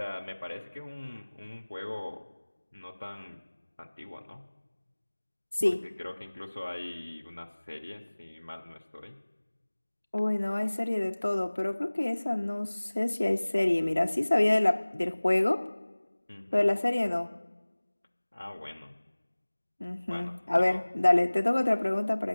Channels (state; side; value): inverted; both; correlation -1.00